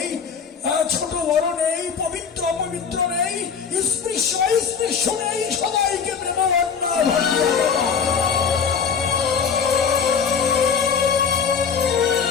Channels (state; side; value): quieter; right; 6.5 dB